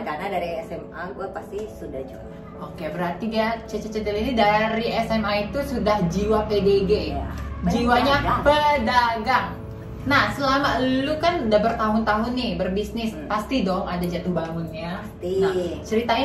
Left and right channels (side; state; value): both; identical; correlation 1.00